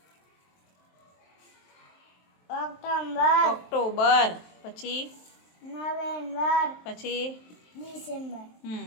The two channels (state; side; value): late; right; 23 ms